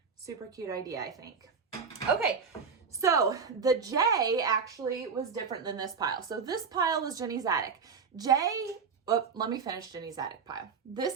Super cute idea, I think. Okay. So the J actually was different than this pile. So this pile was Jenny's Attic. Let me finish Jenny's Attic pile.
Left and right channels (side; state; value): left; quieter; 5.7 dB